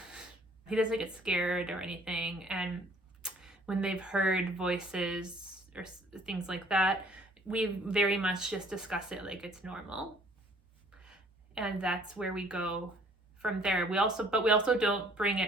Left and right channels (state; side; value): normal; both; correlation 0.58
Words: He doesn't get scared or anything. And when they've heard voices or things like that, we very much just discuss it like it's normal. And that's where we go from there. We also don't bring